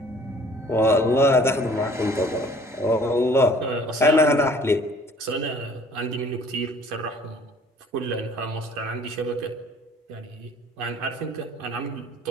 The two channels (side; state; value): both; normal; correlation 0.53